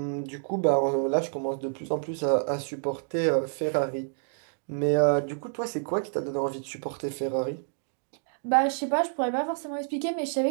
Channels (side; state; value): left; silent; digital silence